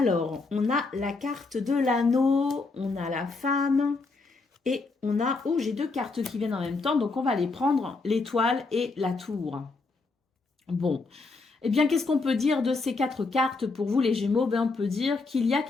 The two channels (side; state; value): right; quieter; 3.8 dB